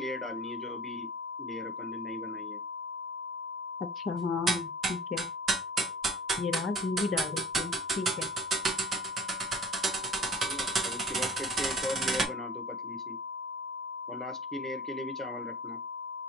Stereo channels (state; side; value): normal; both; correlation 0.43